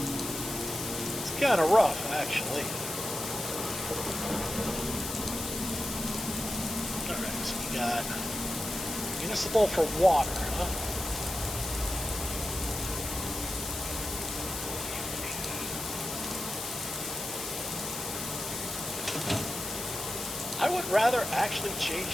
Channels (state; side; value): noise; left; hiss, 5 dB below the sound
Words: It's kind of rough, actually. Alright, so we got... Municipal for water, huh? I would rather actually